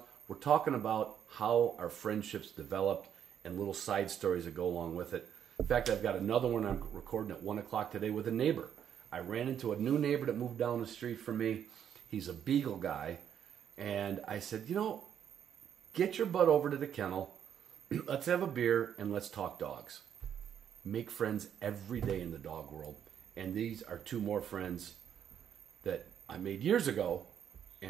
We're talking about how our friendships developed and little side stories that go along with it. In fact, I've got another one I'm recording at 1 o'clock today with a neighbor. I ran into a new neighbor that moved down the street from me. He's a beagle guy. And I said, get your butt over to the kennel. Let's have a beer and let's talk dogs. Make friends every day in the dog world. And these are 2 more friends that I made years ago,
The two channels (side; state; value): left; quieter; 9.0 dB